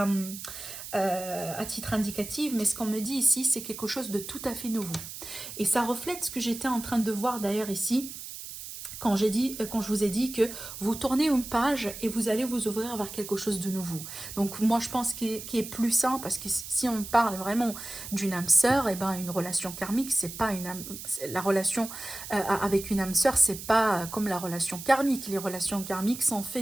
titre indicatif. Mais ce qu'on me dit ici, c'est quelque chose de tout à fait nouveau. Et ça reflète ce que j'étais en train de voir d'ailleurs ici, quand je vous ai dit que vous tournez une page et vous allez vous ouvrir vers quelque chose de nouveau. Donc moi je pense qu'il est plus sain, parce que si on parle vraiment d'une âme sœur, et ben une relation karmique, c'est pas une âme, la relation avec une âme sœur, c'est pas comme la relation karmique. Les relations karmiques sont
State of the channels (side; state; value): right; noise; hiss, 10 dB below the sound